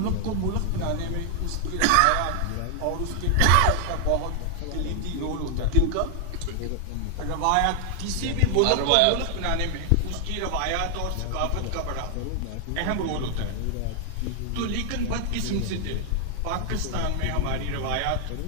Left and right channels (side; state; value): both; different; correlation 0.00